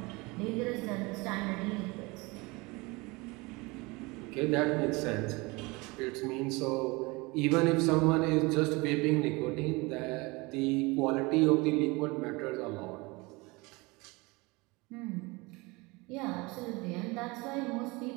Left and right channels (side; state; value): left; quieter; 24.8 dB